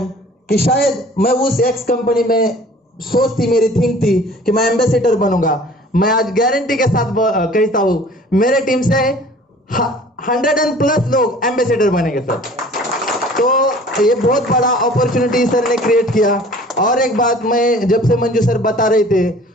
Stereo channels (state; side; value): normal; both; correlation 0.48